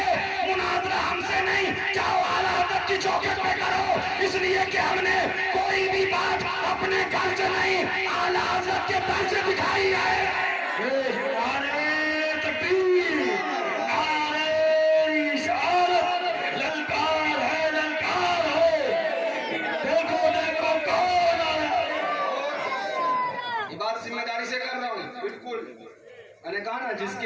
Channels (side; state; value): both; identical; correlation 1.00